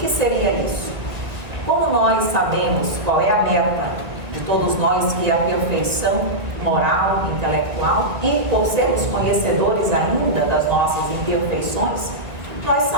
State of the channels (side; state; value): left; late; 1.9 ms